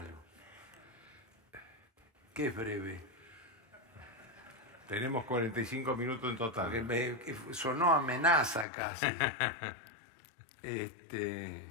¿Qué es breve? Tenemos 45 minutos en total. Porque me sonó amenaza casi.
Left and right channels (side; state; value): right; drops out; at 8.7 s